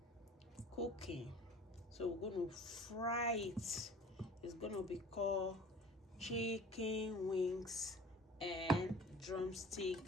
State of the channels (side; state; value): both; normal; correlation 0.44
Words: cooking. So we're going to fry it. It's going to be called chicken wings and drumstick